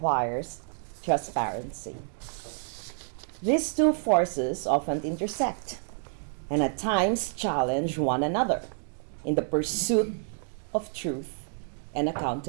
transparency. These two forces often intersect and at times challenge one another in the pursuit of truth and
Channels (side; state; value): left; silent; digital silence